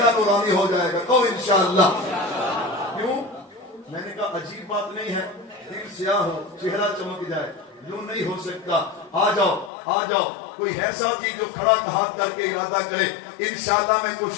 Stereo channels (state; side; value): drops out; right; at 9.7 s